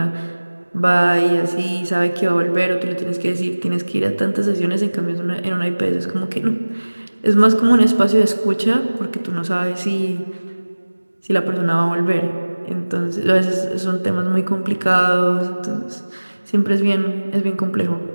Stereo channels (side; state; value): both; inverted; correlation -1.00